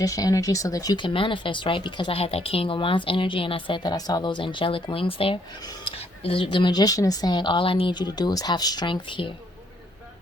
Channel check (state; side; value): normal; both; correlation 0.69